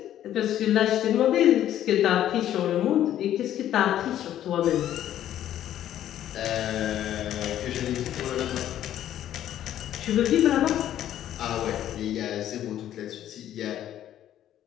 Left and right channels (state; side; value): quieter; right; 11.7 dB